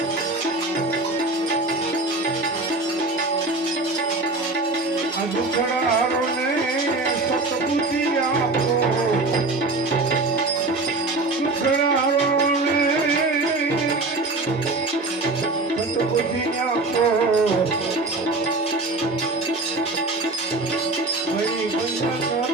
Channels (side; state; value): left; quieter; 3.2 dB